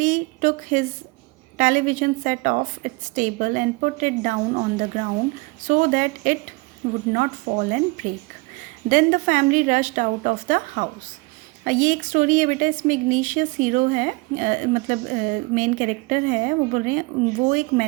took his television set off its table and put it down on the ground so that it would not fall and break. Then the family rushed out of the house. ये एक story है बेटा, इसमें इग्नीशियस hero है, मतलब main character है। वो बोल रहे हैं वो एक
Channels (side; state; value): left; quieter; 26.1 dB